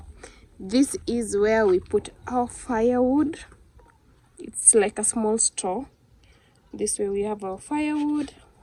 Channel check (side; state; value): both; identical; correlation 1.00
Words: this is where we put our firewood. It's like a small store. This way we have our firewood